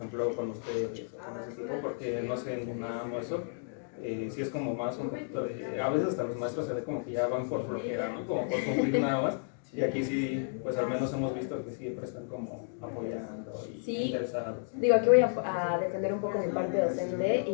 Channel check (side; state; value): right; silent; digital silence